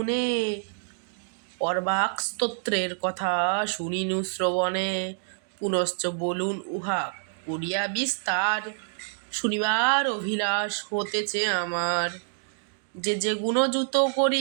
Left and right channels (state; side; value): silent; left; digital silence